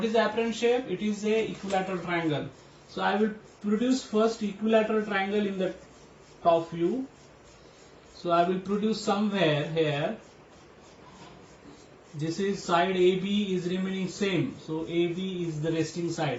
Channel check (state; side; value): identical; both; correlation 1.00